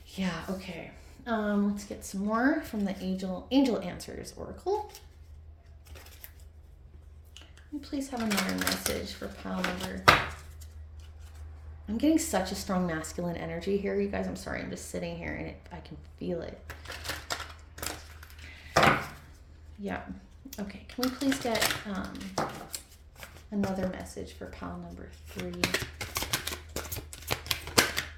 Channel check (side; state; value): both; identical; correlation 1.00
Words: Yeah, okay. Let's get some more from the Angel Answers Oracle. Can we please have another message for pile number... I'm getting such a strong masculine energy here, you guys. I'm sorry, I'm just sitting here and I can feel it. Yeah. Okay, can we please get another message for pile number 3?